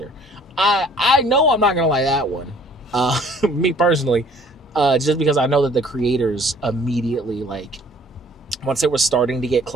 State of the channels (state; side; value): normal; both; correlation 0.56